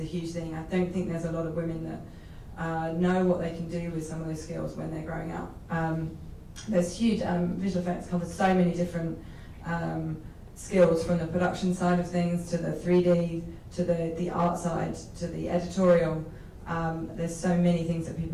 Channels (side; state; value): both; identical; correlation 1.00